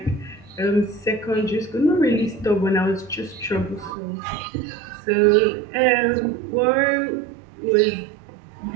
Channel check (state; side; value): drops out; left; at 3.9 s